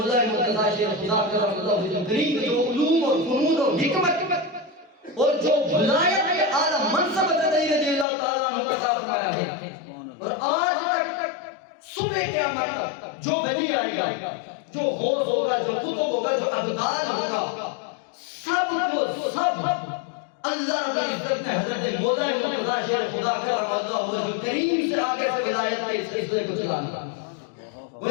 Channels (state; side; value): drops out; right; at 8.1 s